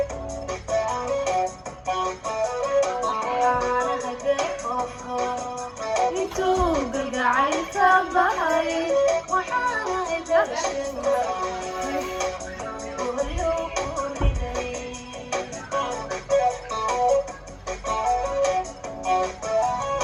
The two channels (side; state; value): both; identical; correlation 1.00